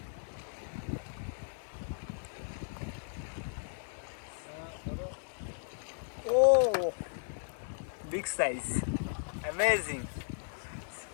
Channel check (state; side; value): silent; right; digital silence